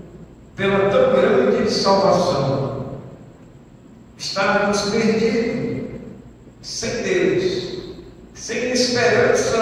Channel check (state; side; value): identical; both; correlation 1.00